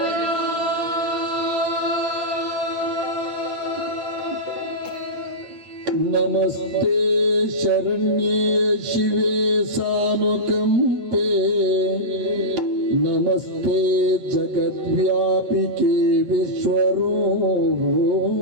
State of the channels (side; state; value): left; late; 8.8 ms